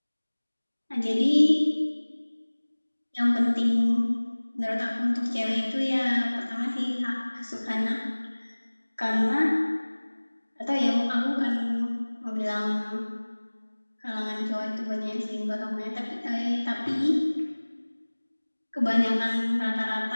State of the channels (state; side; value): inverted; both; correlation -1.00